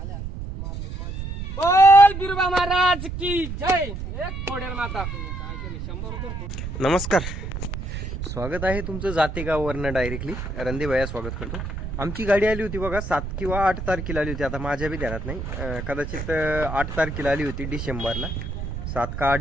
बोल बिरुबा महाराज की जय. एक फोडेल माता. नमस्कार, स्वागत आहे तुमचं जातेगाववरनं डायरेक्टली. रणदीभैया स्वागत करतो. आमची गाडी आली होती बघा 7 किंवा 8 तारखेला आली होती. आता माझ्या बी ध्यानात नाही. कदाचित 8 तारखेला आली होती डिसेंबरला. 7 का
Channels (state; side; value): noise; right; rumble, 6 dB below the sound